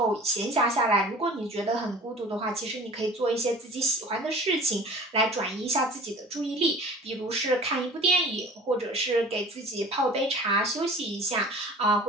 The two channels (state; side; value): normal; both; correlation 0.43